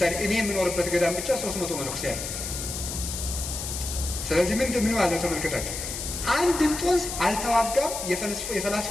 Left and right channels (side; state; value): left; noise; hiss, 6 dB below the sound